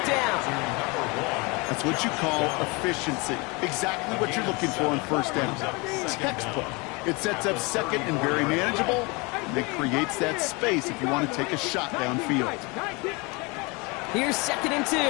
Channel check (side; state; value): right; quieter; 27.6 dB